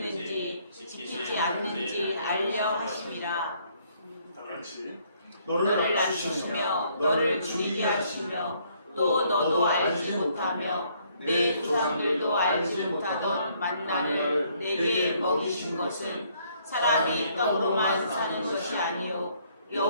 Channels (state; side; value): inverted; both; correlation -0.66